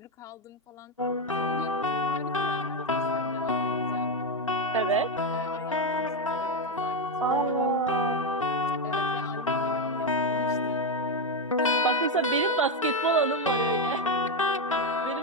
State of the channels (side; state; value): both; normal; correlation 0.08